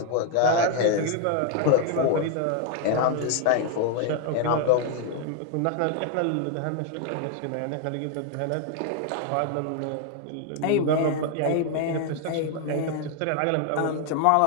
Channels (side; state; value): both; different; correlation 0.01